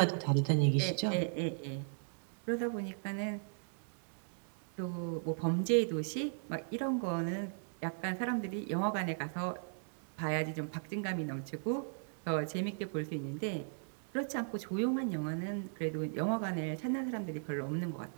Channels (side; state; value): left; silent; digital silence